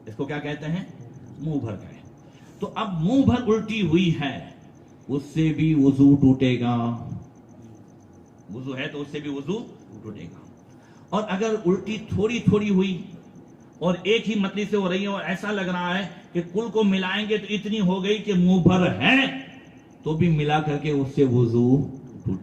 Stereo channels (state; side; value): identical; both; correlation 1.00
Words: اس کو کیا کہتے ہیں؟ منہ بھر قے. تو اب منہ بھر الٹی ہوئی ہے، اس سے بھی وضو ٹوٹے گا. وضو ہے تو اس سے بھی وضو ٹوٹے گا. اور اگر الٹی تھوڑی تھوڑی ہوئی اور ایک ہی متلی سے ہو رہی ہے اور ایسا لگ رہا ہے کہ کل کو ملائیں گے تو اتنی ہو گئی کہ منہ بھر ہے، تو بھی ملا کر کے اس سے وضو